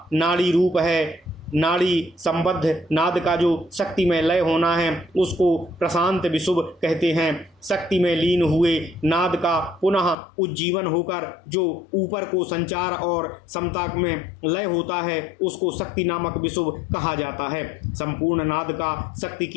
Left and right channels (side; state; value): right; drops out; at 10.2 s